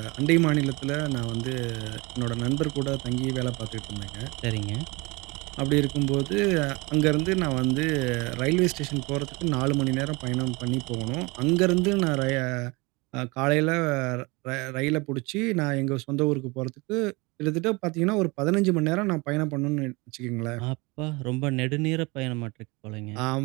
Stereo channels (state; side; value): quieter; left; 25.9 dB